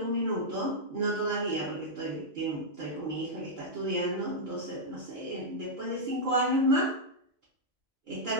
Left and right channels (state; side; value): normal; both; correlation -0.06